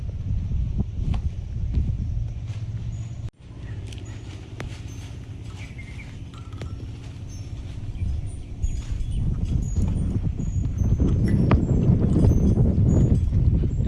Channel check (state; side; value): identical; both; correlation 1.00